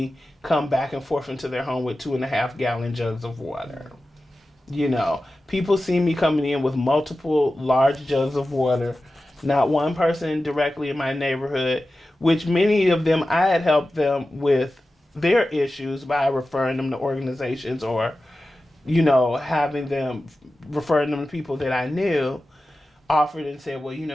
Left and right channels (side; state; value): both; normal; correlation 0.94